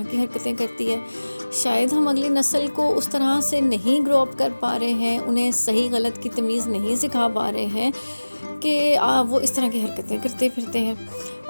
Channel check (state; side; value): inverted; both; correlation -1.00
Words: की हरकतें करती है। शायद हम अगली नस्ल को उस तरह से नहीं ग्रो अप कर पा रहे हैं, उन्हें सही गलत की तमीज़ नहीं सिखा पा रहे हैं कि वो इस तरह की हरकतें करते फिरते हैं,